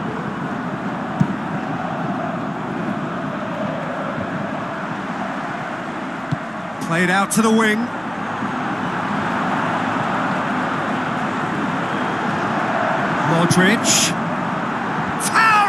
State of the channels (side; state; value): right; noise; hum, 29 dB below the sound